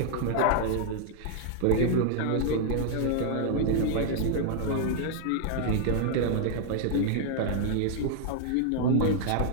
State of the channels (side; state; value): both; different; correlation -0.01